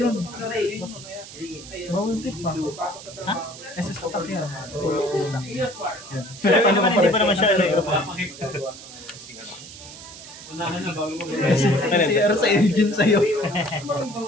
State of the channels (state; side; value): noise; right; hiss, 15 dB below the sound